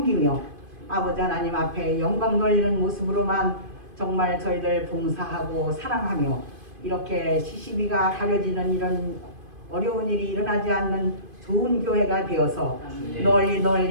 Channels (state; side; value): late; left; 2.5 ms